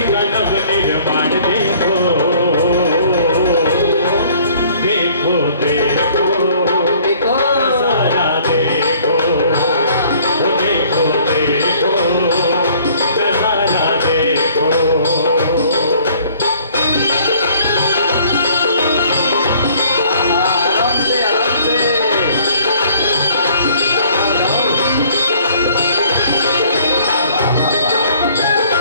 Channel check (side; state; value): both; inverted; correlation -0.57